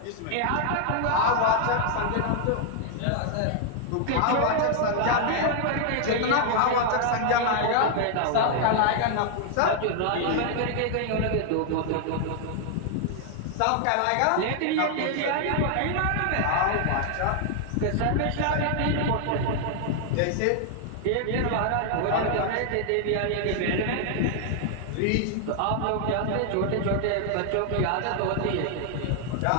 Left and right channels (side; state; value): both; different; correlation 0.00